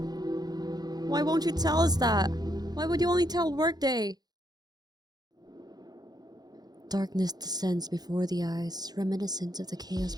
Why won't you tell us that? Why would you only tell Workday? Darkness descends before the eyes, reminiscent of the chaos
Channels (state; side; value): late; left; 0.19 ms